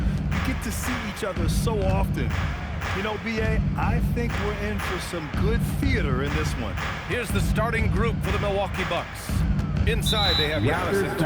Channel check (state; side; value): identical; both; correlation 1.00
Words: get to see each other so often. You know, B.A., I think we're in for some good theater in this one. Here's the starting group for the Milwaukee Bucks. Inside, they have Giannis and